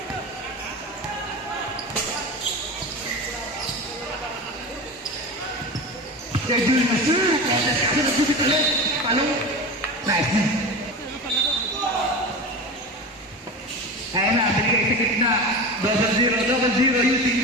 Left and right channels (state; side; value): normal; both; correlation 0.28